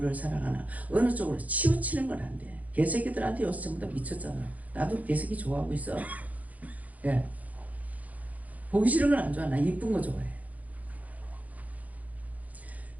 사랑하나 어느 쪽으로 치우치는 건 안 돼. 개새끼들한테 요새 전부 다 미쳤잖아. 나도 개새끼 좋아하고 있어. 예. 보기 싫은 건 안 좋아. 나 이쁜 거 좋아해.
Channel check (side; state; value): left; late; 0.075 ms